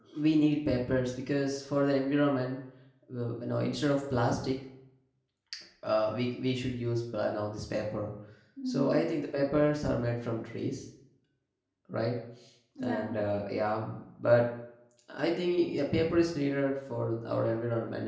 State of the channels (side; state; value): both; identical; correlation 1.00